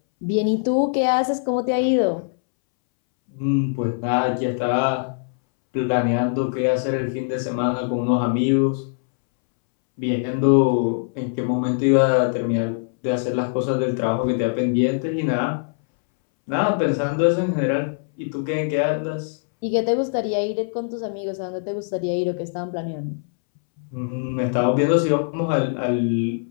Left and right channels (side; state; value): right; silent; 64 dB below the other